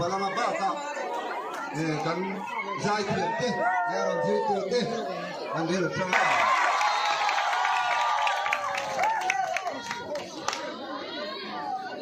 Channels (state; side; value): identical; both; correlation 1.00